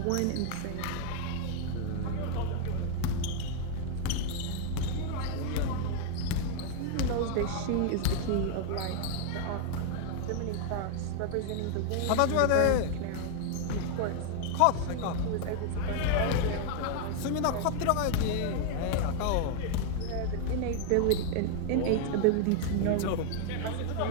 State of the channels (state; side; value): different; both; correlation 0.00